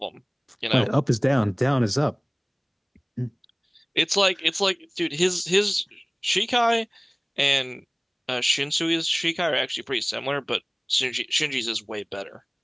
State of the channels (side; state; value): both; identical; correlation 1.00